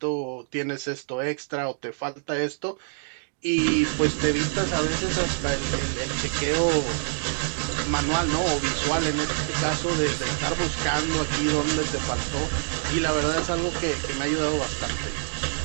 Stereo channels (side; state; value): left; silent; digital silence